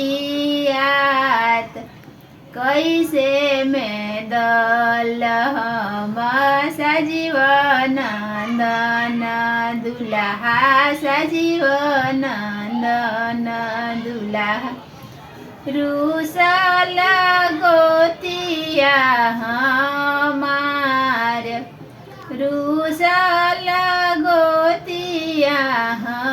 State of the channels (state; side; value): identical; both; correlation 1.00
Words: बरियात कैसे में दल हम सजीव नंदन दुल्हा सजीव नंदन दुल्हा रूसल गोतिया हमार रूसल गोतिया